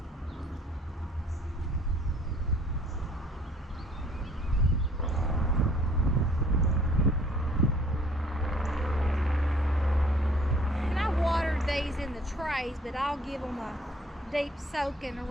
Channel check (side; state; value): both; normal; correlation 0.58